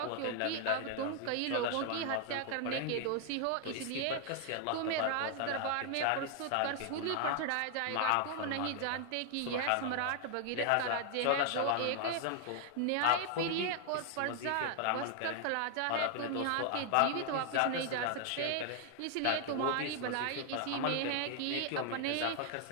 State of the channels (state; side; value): different; both; correlation 0.00